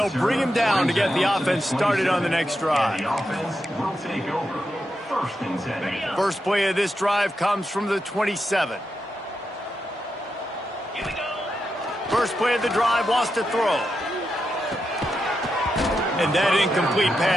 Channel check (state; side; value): normal; both; correlation 0.86